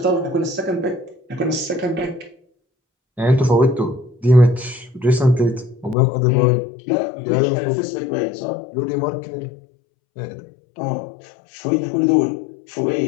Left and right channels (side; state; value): right; drops out; at 6.0 s